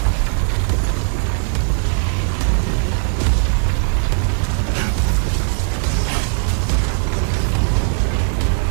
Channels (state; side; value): silent; left; 60 dB below the other